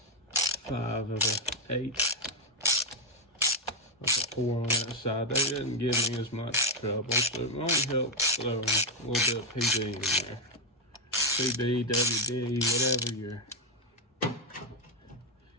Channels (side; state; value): both; normal; correlation 0.03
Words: 5 of the 8. With a 4 on that side, they didn't give me as much trouble, so it won't help throwing a little bit of PB in there. PB, WD, whatever